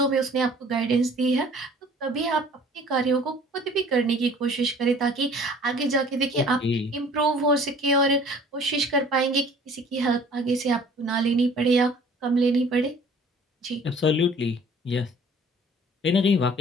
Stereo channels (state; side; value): normal; both; correlation 0.51